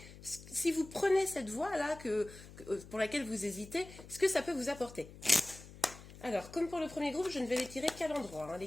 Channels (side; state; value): left; noise; hum, 17 dB below the sound